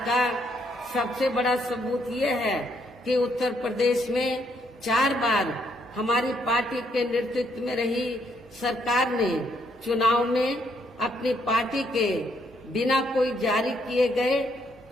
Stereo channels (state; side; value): normal; both; correlation 0.72